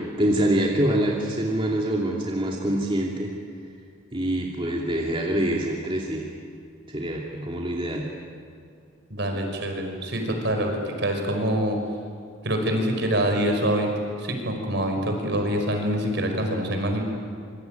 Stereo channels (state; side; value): normal; both; correlation 0.47